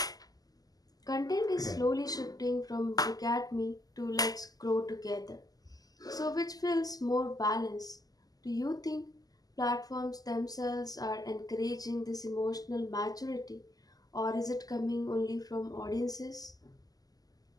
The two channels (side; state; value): right; late; 0.18 ms